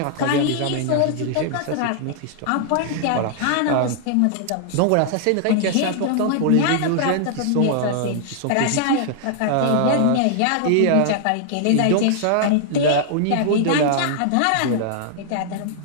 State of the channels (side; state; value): both; different; correlation -0.01